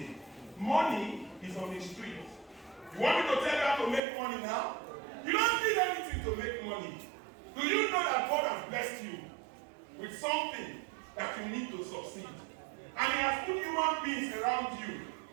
Money is on the street. You want me to tell you how to make money now? You don't need anything to make money. Do you know that God has blessed you with something that you need to succeed? And He has put human beings around you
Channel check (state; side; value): drops out; left; at 4.0 s